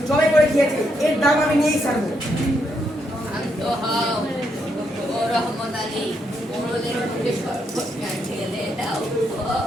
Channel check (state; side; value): normal; both; correlation 0.78